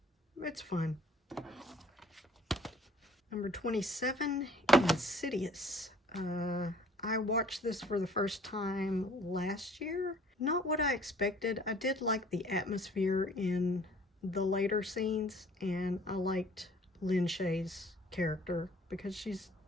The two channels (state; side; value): normal; both; correlation 0.54